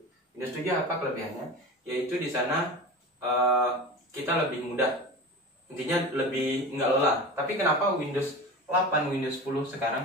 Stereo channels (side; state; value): both; normal; correlation 0.31